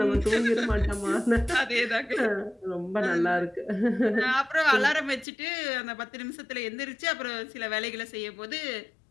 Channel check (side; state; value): right; drops out; at 5.2 s